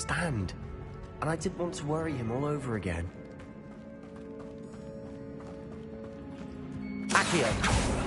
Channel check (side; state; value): both; identical; correlation 1.00